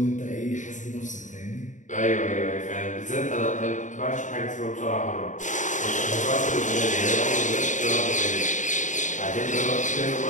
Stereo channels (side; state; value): right; late; 0.36 ms